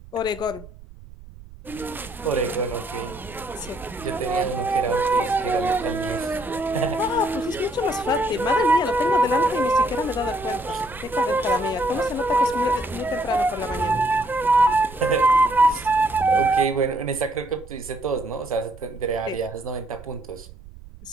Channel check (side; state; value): right; noise; rumble, 19 dB below the sound